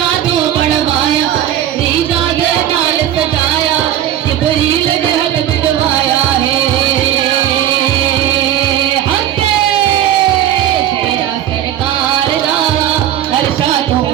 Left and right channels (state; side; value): quieter; left; 11.5 dB